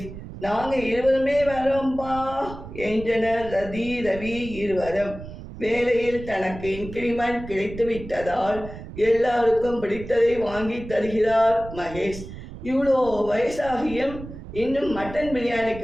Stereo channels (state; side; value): noise; right; rumble, 13 dB below the sound